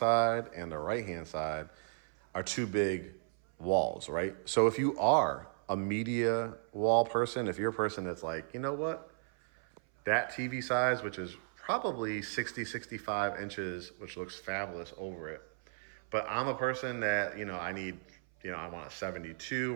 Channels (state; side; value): silent; left; 54 dB below the other